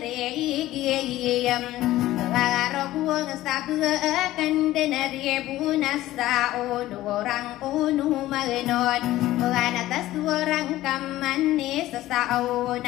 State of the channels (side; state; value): right; quieter; 15.5 dB